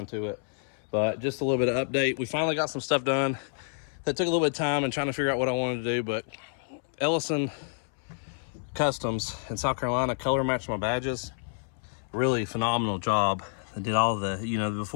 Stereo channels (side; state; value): right; silent; 59 dB below the other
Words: to it. But just a little bit of update. We finally got some stuff done that took a little bit of time and trying to figure out what I wanted to do, but Ellison Customs in South Carolina color matched my badges. Really phenomenal job. I did all the,